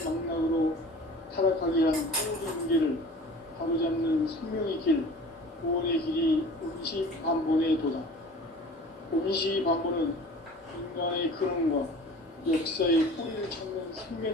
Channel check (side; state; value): both; normal; correlation 0.43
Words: 타락하게 한 모든 문제를 바로잡는 생명의 길, 구원의 길이 음시반본에 도다. 음시반본은 인간의 근원과 역사의 뿌리를 찾는